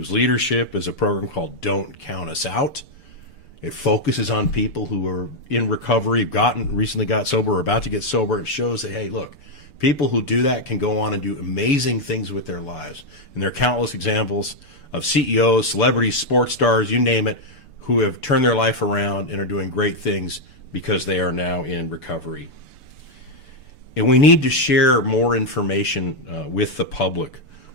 leadership is a program called Don't Count Us Out. It focuses on people who are in recovery, recently got sober or about to get sober. It shows that, hey, look, people who do that can go on and do amazing things with their lives. And there are countless examples of CEOs, celebrities, sports stars, you name it, who have turned their life around and are doing great things because they are now in recovery. And we need to share more information with the public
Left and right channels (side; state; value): right; late; 6.9 ms